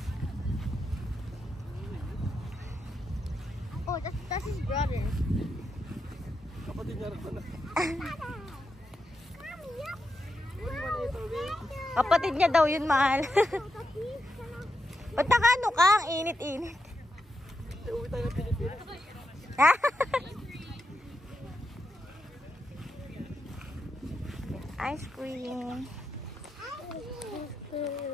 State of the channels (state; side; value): normal; both; correlation 0.86